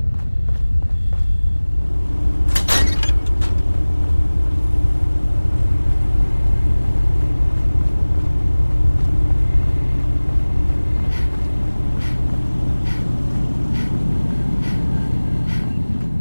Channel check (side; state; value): both; inverted; correlation -1.00